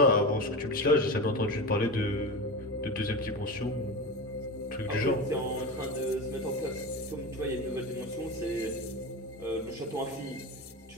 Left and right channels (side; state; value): both; normal; correlation 0.24